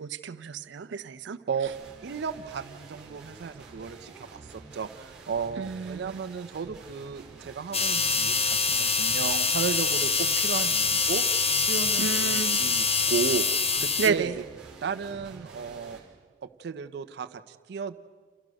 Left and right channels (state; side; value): normal; both; correlation 0.02